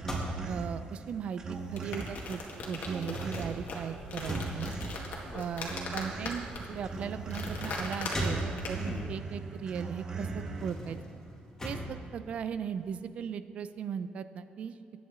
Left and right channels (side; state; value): left; quieter; 3.4 dB